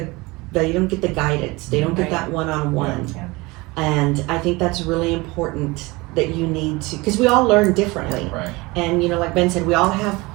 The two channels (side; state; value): left; quieter; 23.3 dB